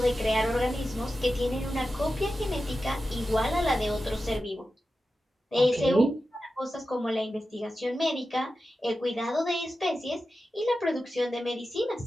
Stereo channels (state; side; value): normal; both; correlation 0.92